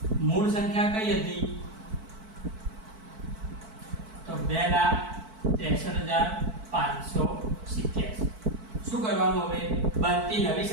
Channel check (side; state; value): left; late; 4.5 ms